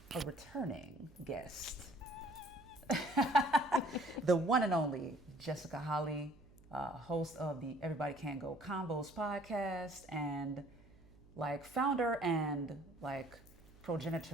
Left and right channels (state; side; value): noise; right; hum, 24 dB below the sound